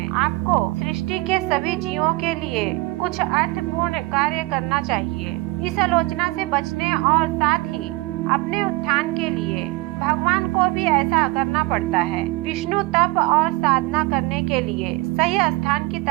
आपको सृष्टि के सभी जीवों के लिए कुछ अर्थपूर्ण कार्य करना चाहिए। इस आलोचना से बचने और साथ ही अपने उत्थान के लिए भगवान को भी ऐसा करना पड़ता है। विष्णु तप और साधना करने के लिए सही स्थान की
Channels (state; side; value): quieter; left; 22.2 dB